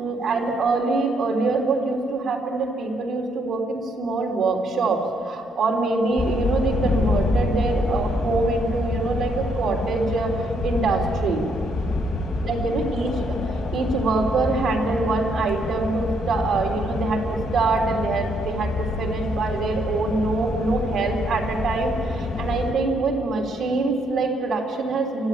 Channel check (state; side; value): normal; both; correlation 0.72